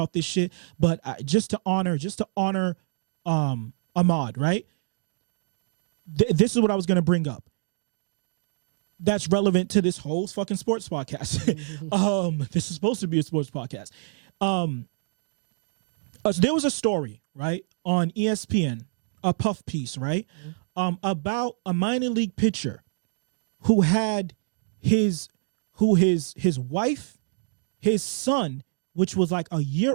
this shit, but just to honor Ahmaud, right? This is what I was going to bring up. That's relevant to this whole fucking sports podcast. This is supposed to be a sports podcast. So there was a story, right, on ESPN, a puff piece, right, about a minor league pitcher who had his wife, his son, which was like a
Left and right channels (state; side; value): silent; left; digital silence